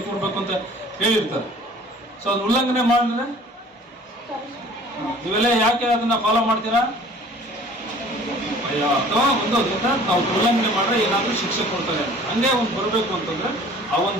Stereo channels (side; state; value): both; normal; correlation 0.49